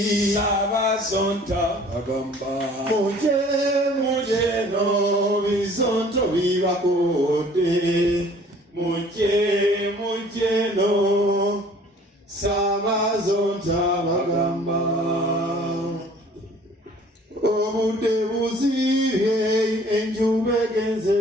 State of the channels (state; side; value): normal; both; correlation 0.52